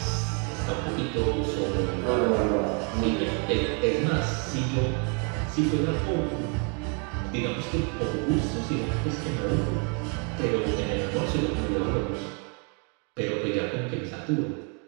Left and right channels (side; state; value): left; quieter; 37.4 dB